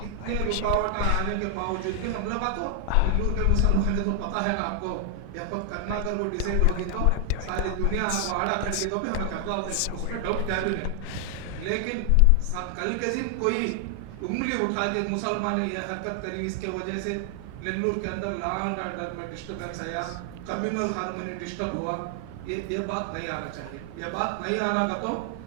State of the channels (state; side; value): different; both; correlation 0.00